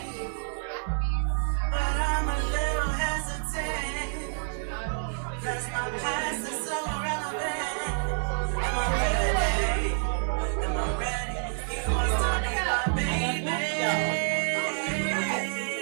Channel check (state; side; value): silent; left; 59 dB below the other